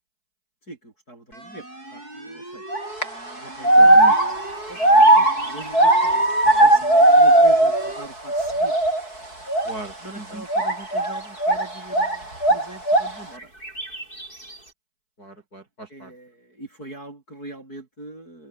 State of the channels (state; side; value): late; right; 4.6 ms